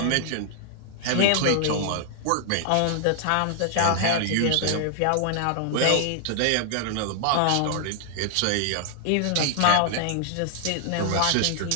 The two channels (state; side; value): different; both; correlation 0.00